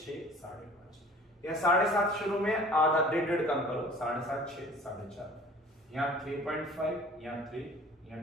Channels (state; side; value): normal; both; correlation 0.47